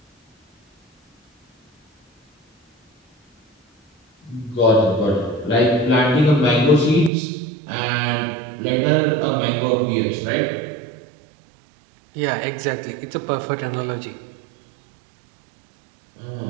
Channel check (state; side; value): drops out; left; at 7.1 s